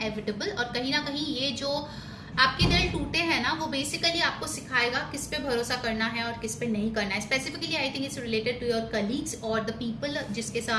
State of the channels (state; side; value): identical; both; correlation 1.00